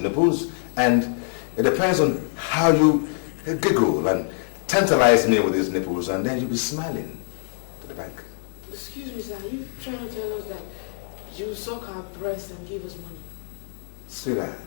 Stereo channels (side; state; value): right; silent; digital silence